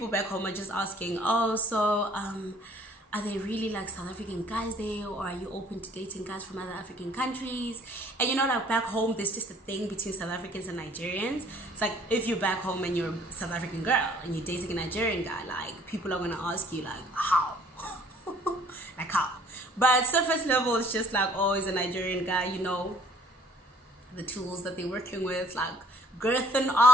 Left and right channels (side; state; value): both; normal; correlation 0.57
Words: back home are just asking, oh, so, are they really like South African guys there, or are you open to dating guys from other African countries? And you know, like back home, there's just a thing between South Africans and Nigerians. It's like, if you're back home and you're a South African girl and you're dating a Nigerian guy, like, people are gonna ask you like, how? Like, how? But surface level, it's just like, oh, he's a Nigerian guy, you know, the tools that they're working with, like girth and